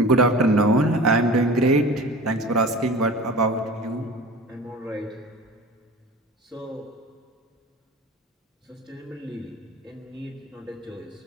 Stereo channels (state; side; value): normal; both; correlation 0.38